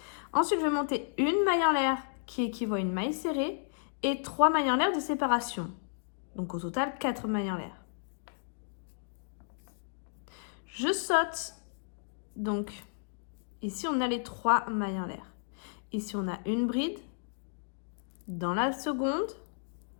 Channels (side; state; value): right; silent; digital silence